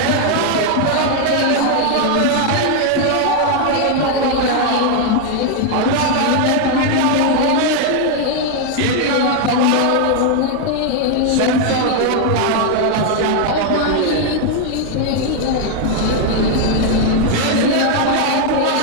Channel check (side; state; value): both; different; correlation 0.00